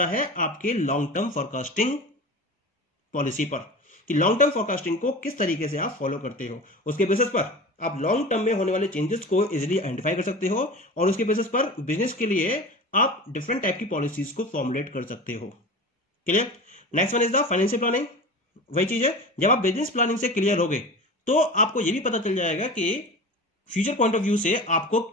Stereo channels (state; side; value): normal; both; correlation 0.33